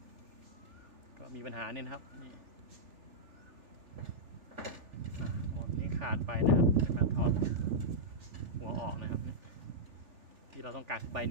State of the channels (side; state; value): left; late; 3.4 ms